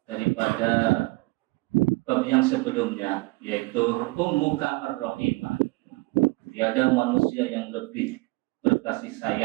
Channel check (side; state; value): left; quieter; 24.3 dB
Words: daripada bab yang sebelumnya yaitu ummuka ar-rahimah tiada manusia yang lebih berkasih